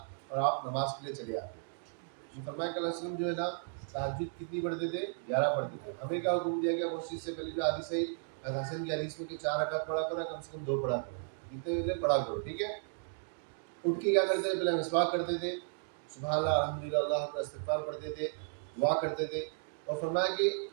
اور آپ نماز کے لیے چلے آتے. فرمایا کہ اللہ علیہ وسلم جو ہے نا تہجد کتنی پڑھتے تھے؟ 11 پڑھتے تھے. ہمیں کیا حکم دیا گیا اس چیز سے پہلے جو حدیث ہے حسن کی حدیث میں کہ 4 رکعت پڑھا کرو، کم سے کم 2 پڑھا کرو، جتنے پڑھا کرو. ٹھیک ہے. اٹھ کے کیا کرتے تھے؟ پہلے مسواک کرتے تھے، سبحان اللہ الحمدللہ اللہ اکبر استغفار پڑھتے تھے، دعا کرتے تھے. اور فرمایا کہ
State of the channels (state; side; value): silent; left; digital silence